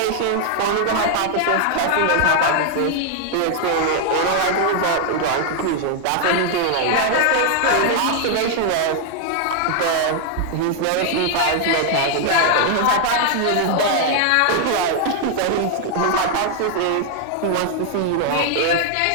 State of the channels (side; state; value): both; different; correlation 0.00